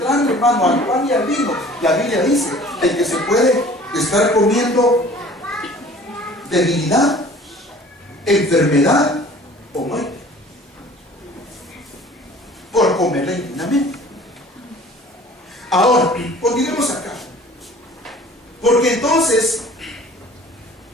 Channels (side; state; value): both; normal; correlation 0.49